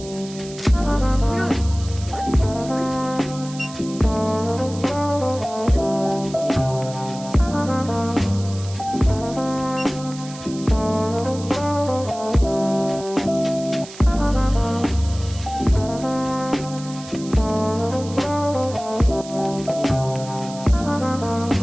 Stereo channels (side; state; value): right; noise; hiss, 16 dB below the sound